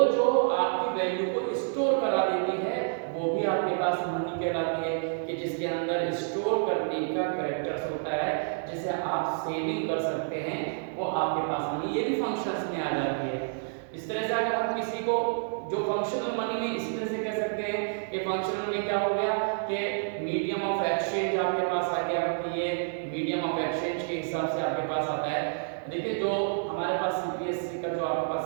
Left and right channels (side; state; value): left; silent; digital silence